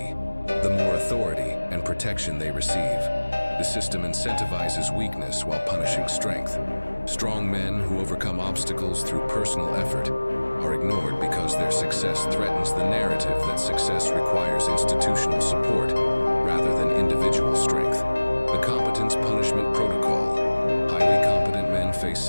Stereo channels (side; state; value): both; inverted; correlation -1.00